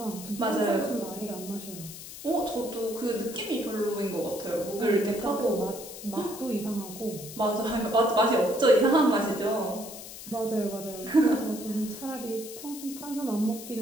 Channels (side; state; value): left; noise; hiss, 12 dB below the sound